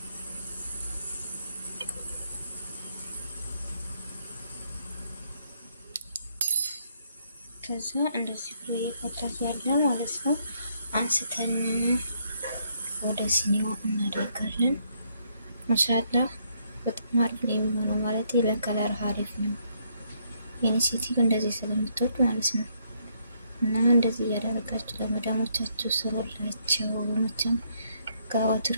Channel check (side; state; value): both; inverted; correlation -0.72